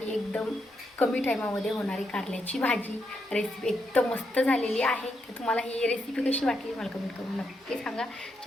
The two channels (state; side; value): normal; both; correlation 0.81